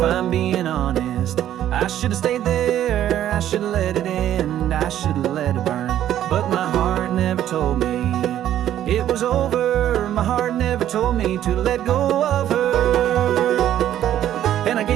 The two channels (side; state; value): left; quieter; 11.6 dB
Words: I'm being honest, I should have stayed there, I should have let it end, I should have let it burn. But my heart never told me it was over. My heart never told me to let go of her.